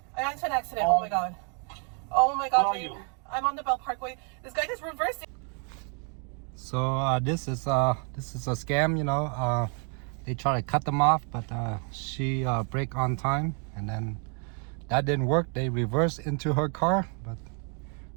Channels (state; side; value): quieter; left; 38.8 dB